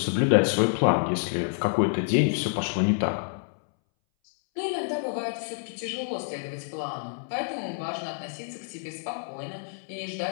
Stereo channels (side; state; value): right; silent; 60 dB below the other